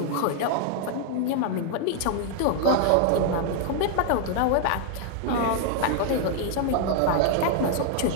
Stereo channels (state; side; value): different; both; correlation 0.00